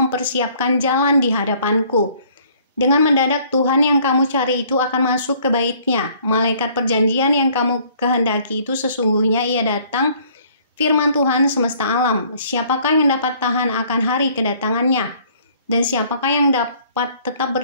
jalan di hadapanku. Dengan mendadak Tuhan yang kamu cari itu akan masuk ke bait-Nya. Malaikat perjanjian yang kamu kehendaki itu sesungguhnya ia datang, firman Tuhan semesta alam. Siapakah yang dapat tahan akan hari kedatangannya? Dan siapakah yang dapat tetap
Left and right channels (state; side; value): inverted; both; correlation -0.58